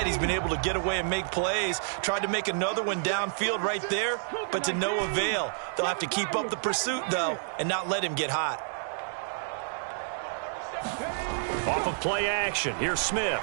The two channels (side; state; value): left; silent; digital silence